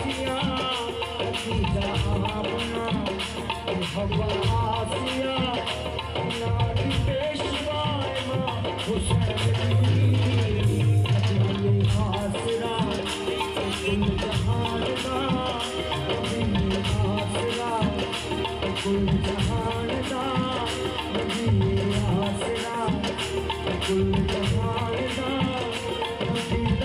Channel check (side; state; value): both; identical; correlation 1.00